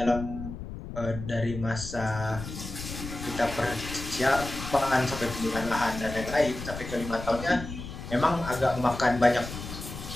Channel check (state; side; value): noise; left; rumble, 9 dB below the sound